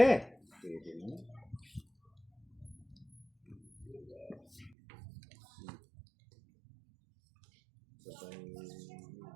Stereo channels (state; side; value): drops out; left; at 4.8 s